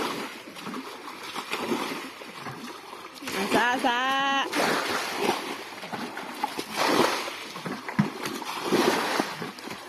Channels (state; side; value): identical; both; correlation 1.00